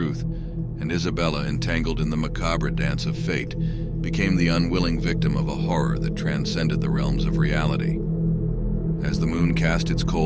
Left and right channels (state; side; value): identical; both; correlation 1.00